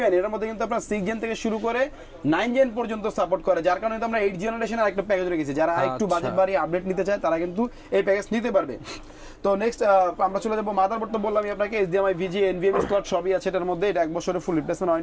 এর মধ্যে কিন্তু আপনার 6 জেন থেকে শুরু করে 9 জেন পর্যন্ত সাপোর্ট করে, যার কারণে আমরা 8 জেনারেশনের একটা প্যাকেজ রেখেছি। যারা একটু বাজেট বাড়িয়ে আপডেট নিতে চায় তারা কিন্তু এই প্যাকেজ নিতে পারবে। তো নেক্সট আমরা চলে যাবো মাদারবোর্ড। তো বললামই আপনাকে HDMI VGA NVMe স্লট সবই আছে এটার মধ্যে। এটা 1 বছরের ফুল রিপ্লেসমেন্ট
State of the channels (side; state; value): both; identical; correlation 1.00